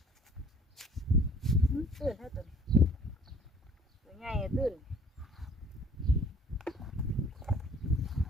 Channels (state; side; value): normal; both; correlation 0.53